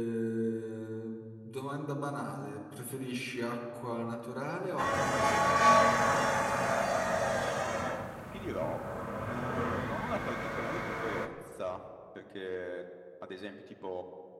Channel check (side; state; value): both; identical; correlation 1.00